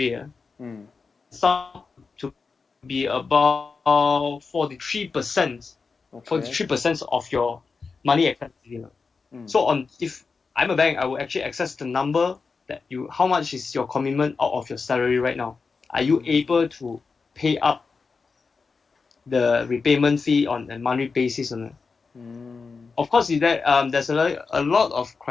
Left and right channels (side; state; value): right; quieter; 4.7 dB